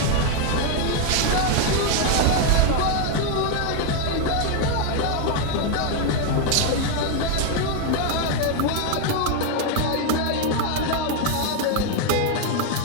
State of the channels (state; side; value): different; both; correlation 0.01